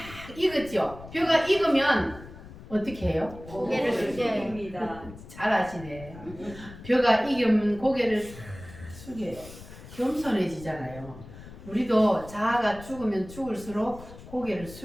익었죠. 벼가 익으면 어떻게 해요? 고개를 숙여요. 입니다. 잘 아시네. 벼가 익으면 고개를 싹 숙여요. 겸손해지잖아요. 우리도 자아가 죽으면 죽을수록 고개를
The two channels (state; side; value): noise; left; rumble, 16 dB below the sound